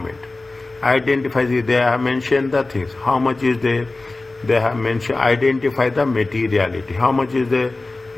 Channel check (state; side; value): quieter; right; 3.2 dB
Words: Identify, they have mentioned the things. How much is there? They have mentioned, identify the materiality. How much is there?